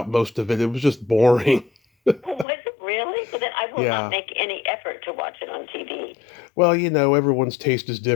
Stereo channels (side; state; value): right; drops out; at 2.5 s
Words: most of it. It was just boring. Was it really? But then I will not make any effort to watch it on TV. Well, everyone's taste is